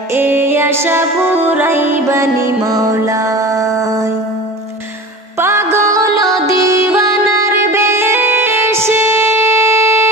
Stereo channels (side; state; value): both; normal; correlation 0.36